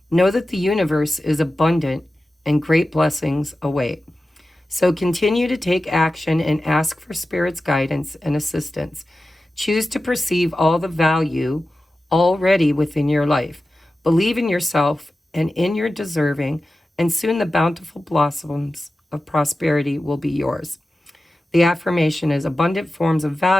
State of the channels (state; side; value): normal; both; correlation 0.94